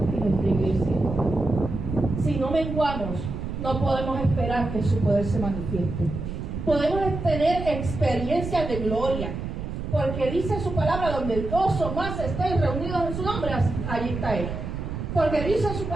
y nuestra iglesia. Si no menguamos, no podemos esperar que su poder se manifieste. Podemos tener experiencias de gloria, porque dice su palabra, donde 2 o más estén reunidos en su nombre, allí está Él. Porque dice su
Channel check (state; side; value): noise; right; rumble, 6 dB below the sound